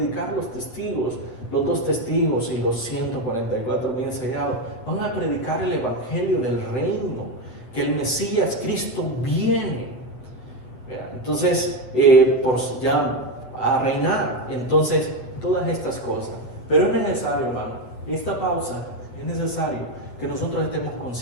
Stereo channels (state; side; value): late; right; 8.1 ms